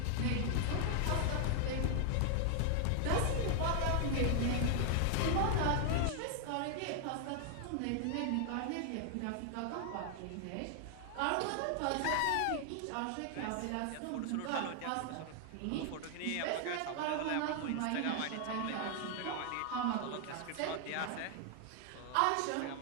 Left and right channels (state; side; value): different; both; correlation 0.00